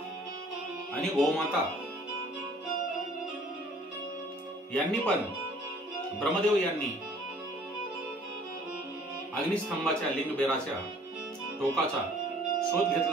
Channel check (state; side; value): normal; both; correlation 0.55